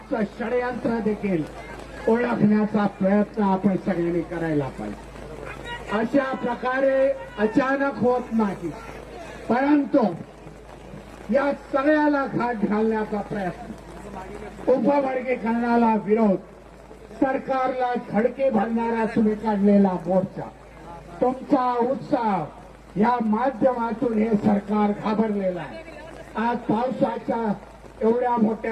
षडयंत्र देखील ओळखण्याचा प्रयत्न आपण सगळ्यांनी करायला पाहिजे. अशा प्रकारे अचानक होत नाही, परंतु या सगळ्याला घाट घालण्याचा प्रयत्न, उपवर्गीकरणाला विरोध, सरकारला धडके भरणारा तुम्ही काढलेला मोर्चा, तुमचा उत्साह या माध्यमातून हे सरकार घाबरलेलं आहे. आज पावसाच्या एवढ्या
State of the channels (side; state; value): both; identical; correlation 1.00